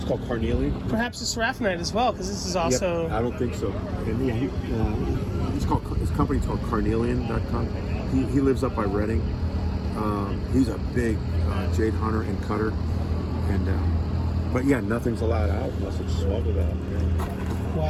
called carnelian. Perhaps it's seraphonite as well, because this is also. Yep, I don't think so. And his company's called Carnelian.com. He lives up by Reading. He's a big jade hunter and cutter, and but nothing's allowed out unless it's smuggled out. Yeah.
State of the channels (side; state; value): both; identical; correlation 1.00